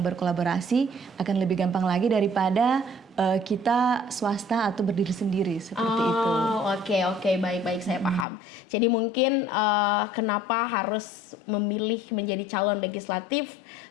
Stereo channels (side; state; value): right; drops out; at 8.2 s